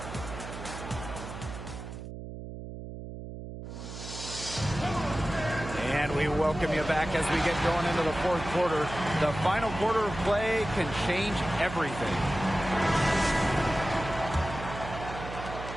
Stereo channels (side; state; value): right; noise; hum, 10 dB below the sound